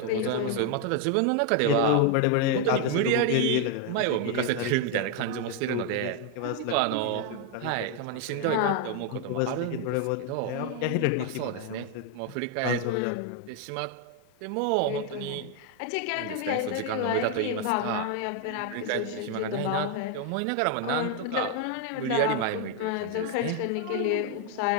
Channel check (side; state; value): both; different; correlation 0.01